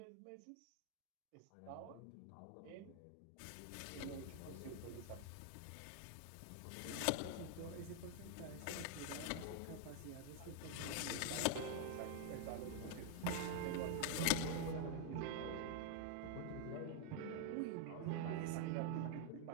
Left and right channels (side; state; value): both; different; correlation 0.00